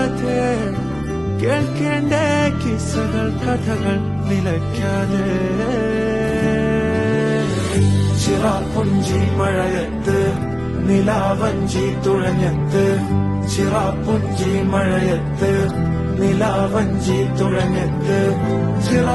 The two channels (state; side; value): noise; right; rumble, 20 dB below the sound